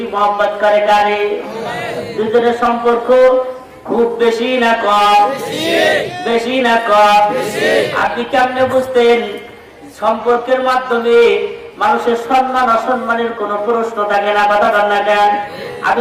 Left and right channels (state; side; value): identical; both; correlation 1.00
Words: মহব্বত করে কারে? দুজনের সম্পর্ক খুব বেশি না কম? বেশি না কম? আপনি কেমনে বুঝতেন? সম্পর্কের মাধ্যমে মানুষের সম্মান অসম্মানের কোন প্রশ্ন থাকে না, কথা বল না কেন?